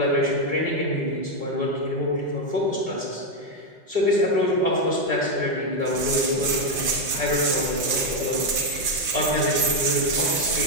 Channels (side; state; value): left; late; 5.8 ms